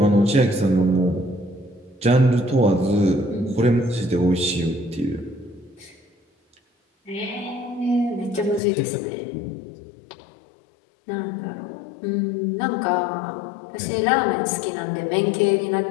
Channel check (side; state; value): right; drops out; at 8.6 s